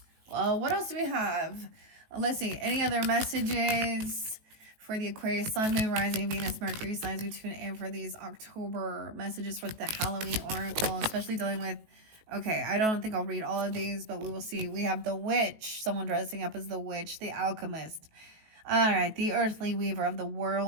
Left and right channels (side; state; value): left; late; 19 ms